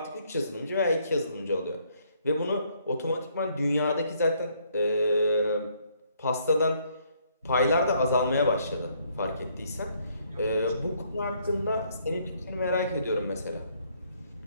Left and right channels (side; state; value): both; inverted; correlation -0.68